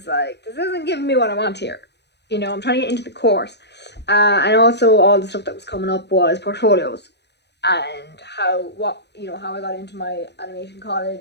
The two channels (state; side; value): late; right; 0.50 ms